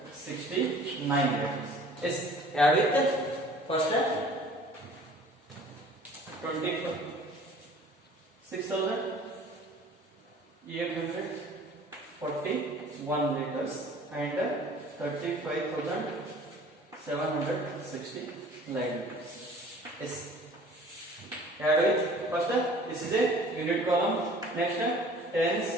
liters. Yes, add with first 26,841 liters and 35,769 liters. Yes, add with first this is a unit column. Next tens,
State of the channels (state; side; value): normal; both; correlation 0.49